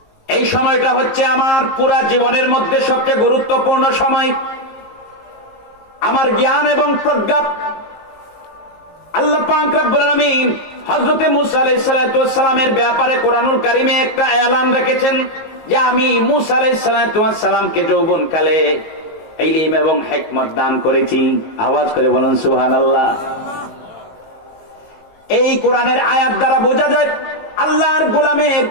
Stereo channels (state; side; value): late; right; 19 ms